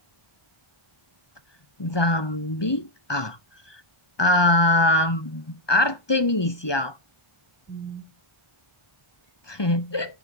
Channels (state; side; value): late; right; 1.2 ms